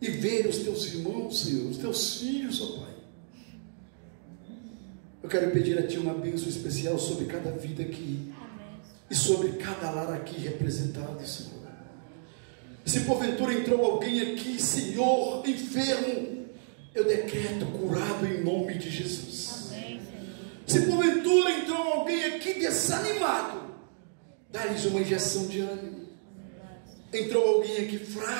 e ver os Teus irmãos, Senhor, os Teus filhos, ó Pai. Eu quero pedir a Ti uma bênção especial sobre cada vida aqui. Amém. E sobre cada lar aqui representado, Senhor. Se porventura entrou alguém aqui, Senhor, enfermo, eu decreto curado em nome de Jesus. Amém, se porventura entrou alguém aqui desanimado, dá-lhes uma injeção de ânimo. Entrou alguém aqui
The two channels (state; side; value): silent; left; digital silence